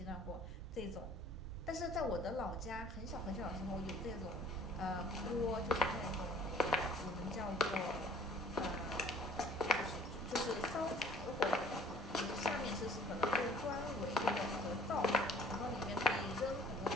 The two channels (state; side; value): normal; both; correlation 0.52